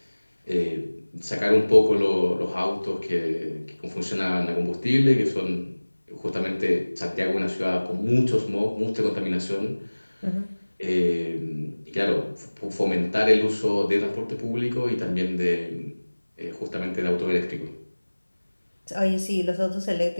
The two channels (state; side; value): inverted; both; correlation -1.00